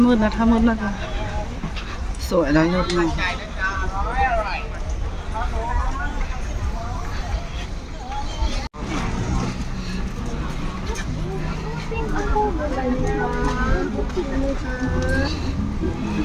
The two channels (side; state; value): both; identical; correlation 1.00